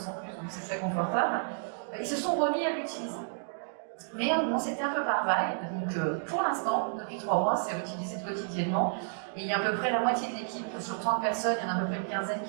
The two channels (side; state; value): left; silent; digital silence